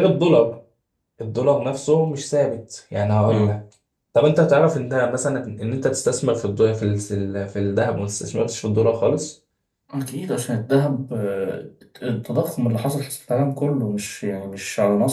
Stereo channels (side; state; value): both; identical; correlation 1.00